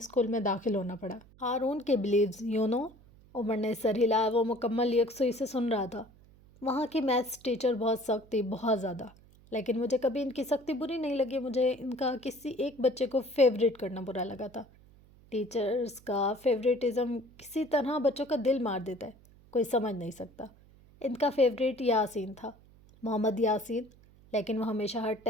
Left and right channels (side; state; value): right; noise; hum, 26 dB below the sound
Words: میں داخل ہونا پڑا۔ ہارون کے بلیوز یو نو۔ عمر نے سر ہلایا۔ وہ مکمل یکسوئی سے سن رہا تھا۔ وہاں کی میتھس ٹیچر بہت سخت تھی، بہت زیادہ، لیکن مجھے کبھی ان کی سختی بری نہیں لگی۔ مجھے ان کا کسی ایک بچے کو فیوریٹ کرنا برا لگا تھا۔ ٹیچرز کا فیوریٹزم کسی طرح بچوں کا دل مار دیتا ہے، کوئی سمجھ نہیں سکتا۔ ان کا فیوریٹ یاسین تھا، محمد یاسین، لیکن وہ ہمیشہ ہر